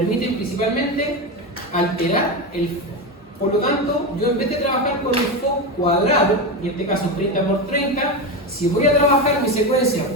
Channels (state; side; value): normal; both; correlation 0.17